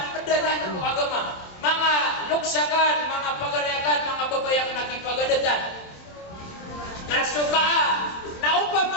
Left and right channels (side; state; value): right; late; 27 ms